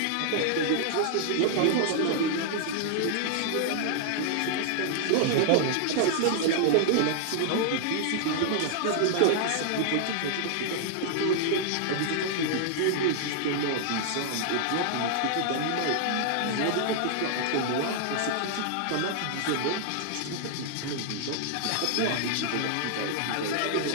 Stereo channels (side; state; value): both; different; correlation 0.00